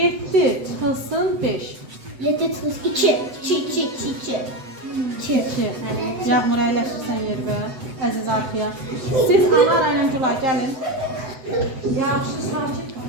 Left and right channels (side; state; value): left; late; 7.9 ms